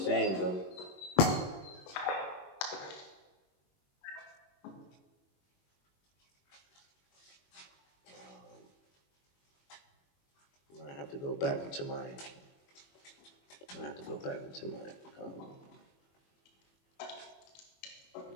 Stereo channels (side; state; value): right; late; 21 ms